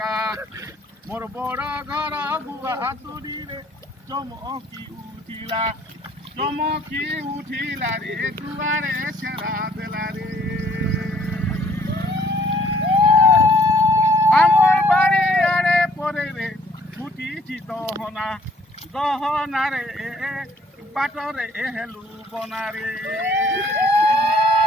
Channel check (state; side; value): normal; both; correlation 0.60